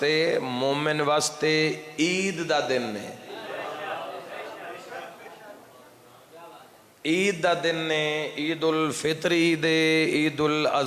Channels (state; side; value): identical; both; correlation 1.00